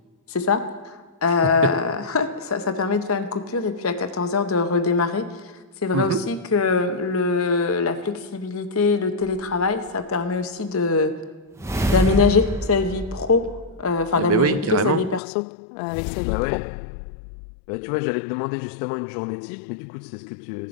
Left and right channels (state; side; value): drops out; right; at 15.2 s